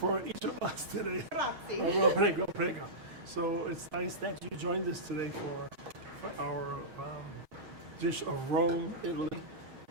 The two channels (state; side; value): late; left; 6.4 ms